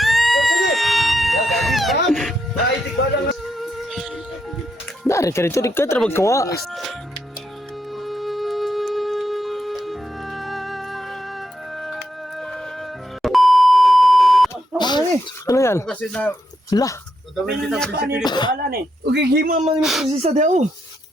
Dari ka rito, di ka trabag kawa. Ano yan? Kasi na, Lah. dadawin kita prinsipyo dito. Wala ni. Okay, gima man yung prosesa daw.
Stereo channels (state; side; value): normal; both; correlation 0.81